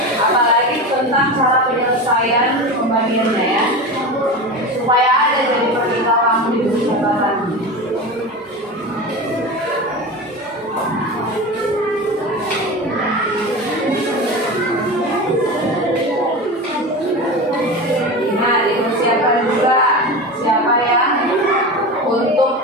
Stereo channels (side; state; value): both; normal; correlation 0.26